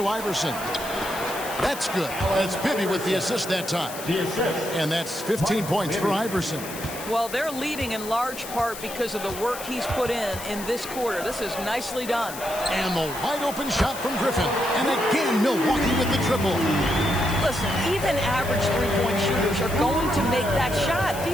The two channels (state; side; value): noise; left; hiss, 11 dB below the sound